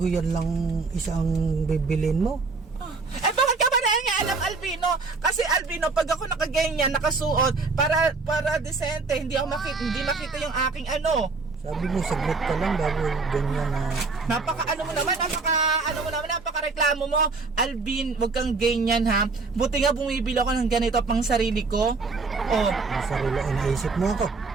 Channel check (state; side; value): quieter; left; 4.1 dB